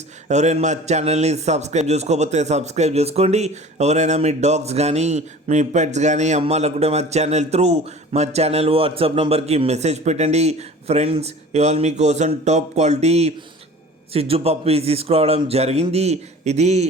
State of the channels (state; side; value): normal; both; correlation 0.42